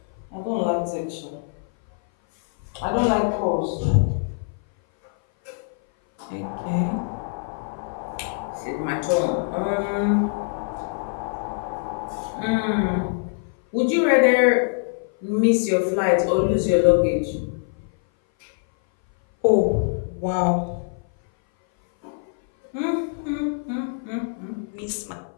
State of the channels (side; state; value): right; silent; 57 dB below the other